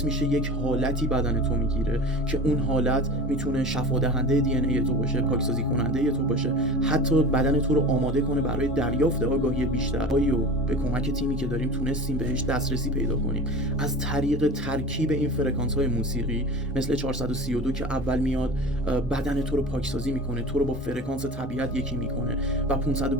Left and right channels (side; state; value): both; normal; correlation 0.34